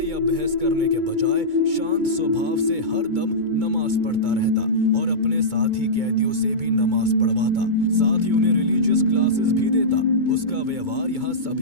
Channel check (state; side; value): late; left; 2.2 ms